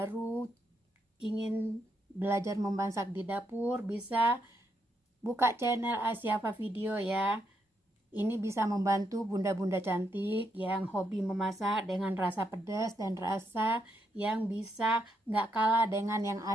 ingin belajar memasak di dapur, bisa buka channel Asyafa Video ya. Ini bisa membantu bunda-bunda cantik yang hobi memasak dengan rasa pedas dan rasa yang bisa nggak kalah dengan yang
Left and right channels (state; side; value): normal; both; correlation 0.79